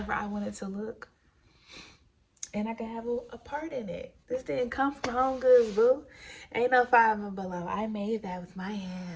I want it to look. And I can have a part in it. This didn't come from Home Goods, boo. Ain't no five and below. I made that with my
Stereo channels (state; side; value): identical; both; correlation 1.00